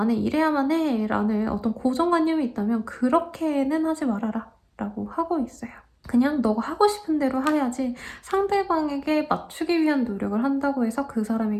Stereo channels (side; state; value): both; identical; correlation 1.00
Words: 이래야만 해 라는 어떤 고정관념이 있다면 그렇게는 하지 말아라 라고 하고 있어요. 그냥 너가 하고 싶은 대로 해야지 상대방에게 맞추기 위한 노력을 한다고 해서 그